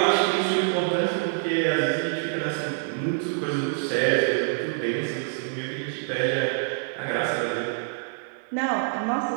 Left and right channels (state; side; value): silent; left; 61 dB below the other